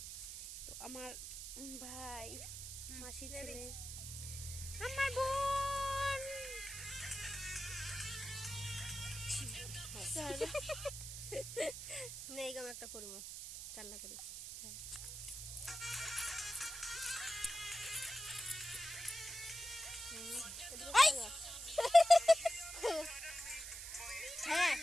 তো আমার ভাই মাসির ছেলে, আমার বোন। নেই গাম একটা করব চাল্লা করি। হ্যাঁ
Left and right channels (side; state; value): right; noise; hiss, 8 dB below the sound